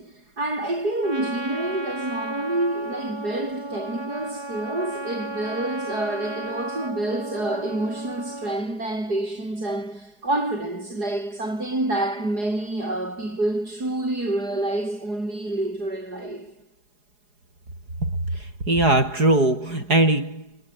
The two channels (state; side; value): late; left; 4.8 ms